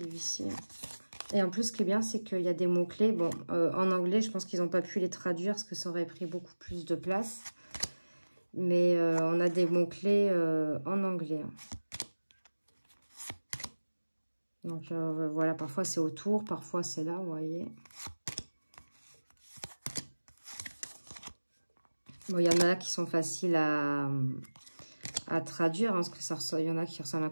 Et en plus, ce qui est bien, c'est qu'il y a des mots-clés. Bon, en anglais, je pense qu'ils n'ont pas pu les traduire parce que ça aurait pris beaucoup plus de place. Mais on a des mots-clés en anglais. Hein. Donc, voilà, parfois c'est autour, parfois c'est là, vous voyez. Bon, il y en a qui sont faciles à traduire, hein, parce que il y en a qui ressemblent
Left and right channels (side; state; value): both; inverted; correlation -1.00